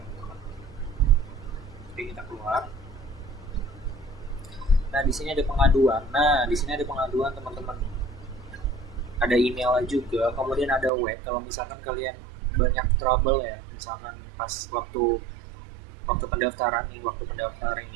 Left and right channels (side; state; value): left; drops out; at 10.9 s